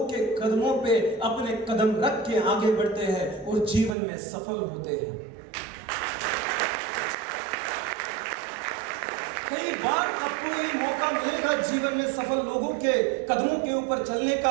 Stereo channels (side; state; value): left; drops out; at 4.0 s